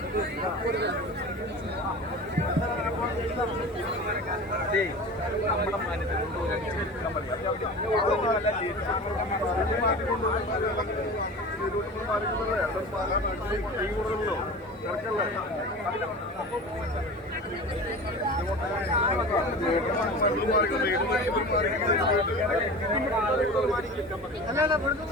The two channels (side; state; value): both; normal; correlation 0.34